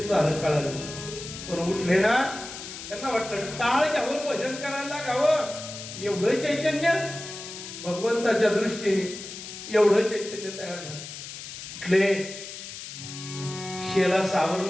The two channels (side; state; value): left; noise; hiss, 11 dB below the sound